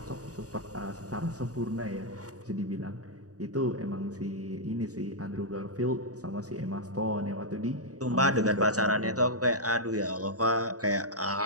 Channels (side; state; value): left; late; 0.67 ms